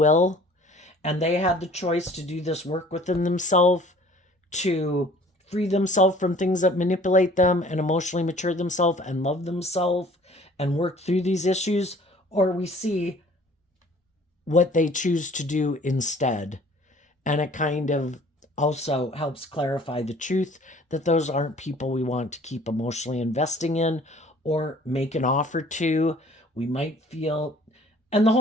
and they had the choice to do this work within themselves to free themselves from things that manipulate them and emotionally mature themselves and love themselves and work through these issues, or we see what they choose to do instead. And it kind of also helps clarify the truth that those aren't people we want to keep emotionally investing in or make an offer to. We might feel, and the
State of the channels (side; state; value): both; normal; correlation 0.52